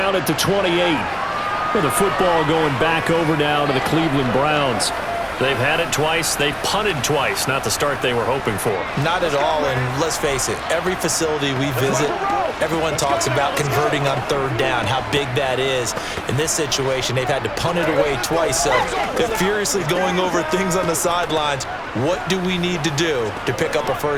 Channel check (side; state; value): both; identical; correlation 1.00